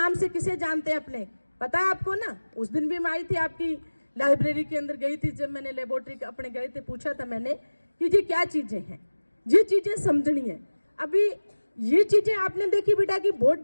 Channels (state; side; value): inverted; both; correlation -1.00